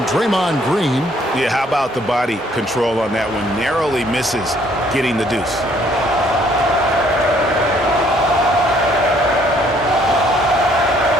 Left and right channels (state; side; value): normal; both; correlation 0.64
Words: Draymond Green. Yeah, how about the body control on that one? Narrowly misses getting the deuce.